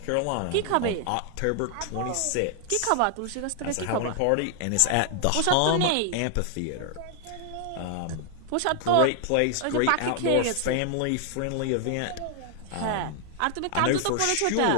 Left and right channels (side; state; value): both; different; correlation 0.00